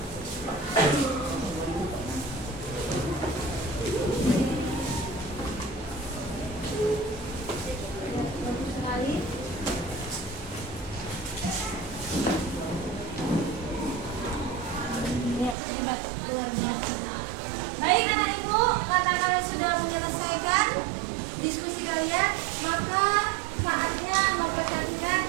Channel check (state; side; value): drops out; left; at 15.6 s